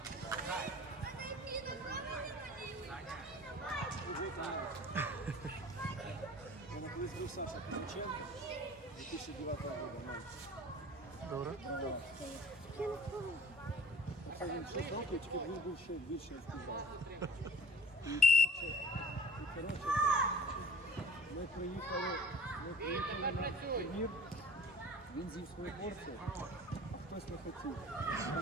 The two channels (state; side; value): normal; both; correlation 0.44